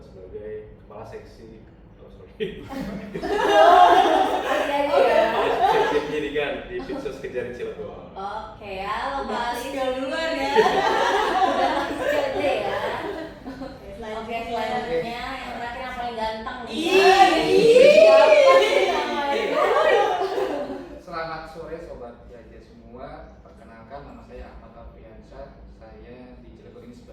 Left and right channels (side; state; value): both; identical; correlation 1.00